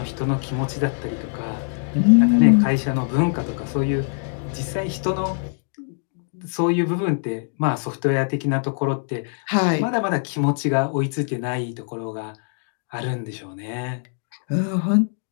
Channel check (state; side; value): silent; right; digital silence